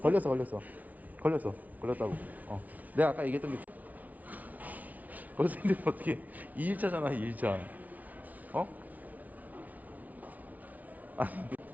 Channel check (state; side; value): late; left; 0.074 ms